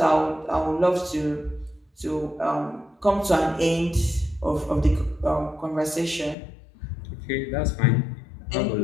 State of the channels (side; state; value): right; drops out; at 6.4 s